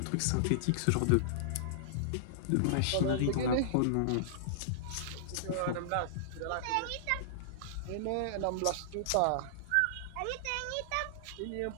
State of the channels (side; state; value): both; different; correlation -0.02